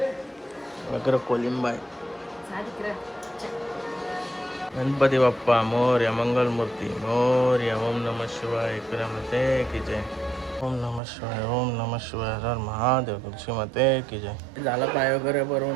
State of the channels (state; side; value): drops out; left; at 11.0 s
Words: वगैरे कोलिंबाई. गणपती बाप्पा मोरया, मंगलमूर्ती मोरया. ओम नमः शिवाय मते की जय. ओम नमः शिवाय, ओम नमः शिवाय, हर महादेव, तुळशी माते की जय. झाला पाय वगैरे